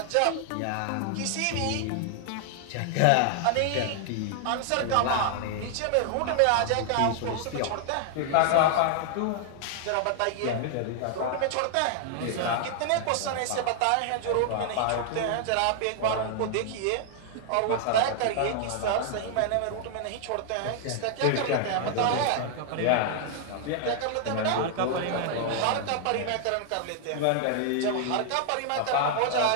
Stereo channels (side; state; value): both; different; correlation 0.00